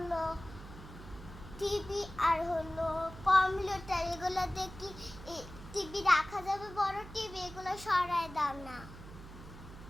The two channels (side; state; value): right; noise; hum, 15 dB below the sound